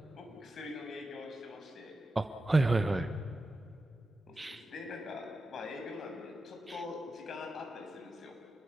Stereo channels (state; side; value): normal; both; correlation 0.90